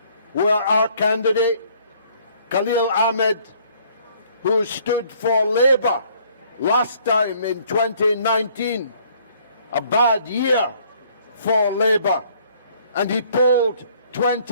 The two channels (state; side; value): inverted; both; correlation -0.61